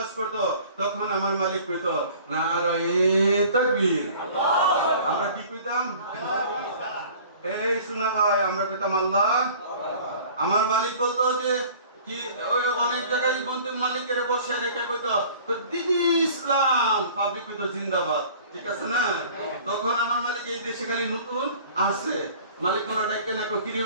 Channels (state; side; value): inverted; both; correlation -0.48